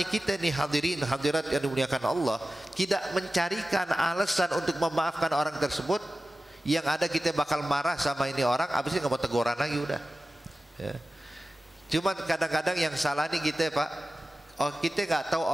kita nih hadirin hadirat yang dimuliakan Allah tidak mencarikan alasan untuk memaafkan orang tersebut, yang ada kita bakal marah sama ini orang, habis ini nggak mau teguran lagi udah. Cuman kadang-kadang yang salah nih kita, Pak, kita nggak tahu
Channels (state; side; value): normal; both; correlation 0.95